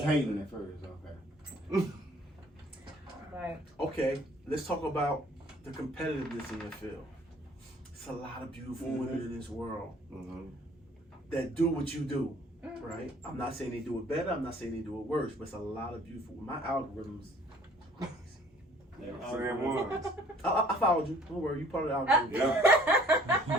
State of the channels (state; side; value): normal; both; correlation 0.56